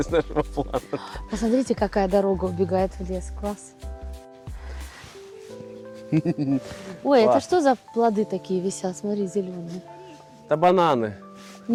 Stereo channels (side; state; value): both; identical; correlation 1.00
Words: нашего плана. Посмотрите, какая дорога убегает в лес. Класс. Ой, это Класс. что за плоды такие висят? Смотри, зеленые. Это бананы.